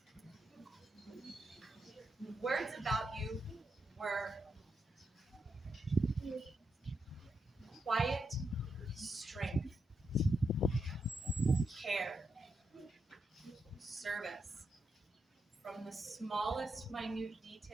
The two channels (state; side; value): normal; both; correlation 0.83